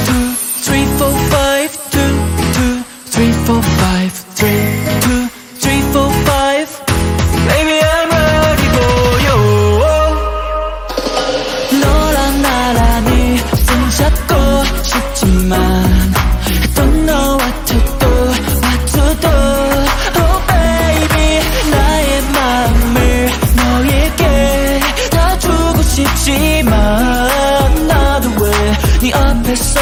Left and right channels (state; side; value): identical; both; correlation 1.00